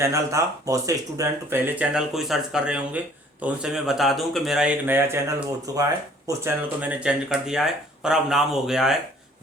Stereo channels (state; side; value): normal; both; correlation 0.56